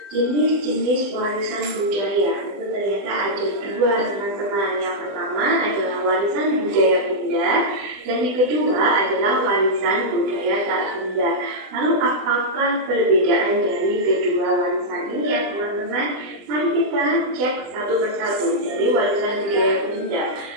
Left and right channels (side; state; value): left; late; 20 ms